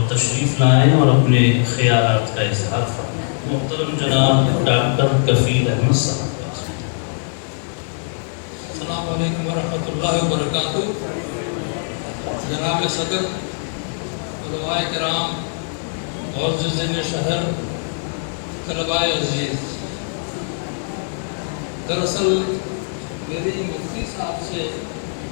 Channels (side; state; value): right; silent; digital silence